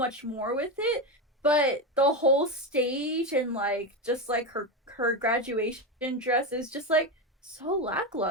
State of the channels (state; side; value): normal; both; correlation 0.14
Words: more with it, but the whole stage and like just like her graduation dress is just like so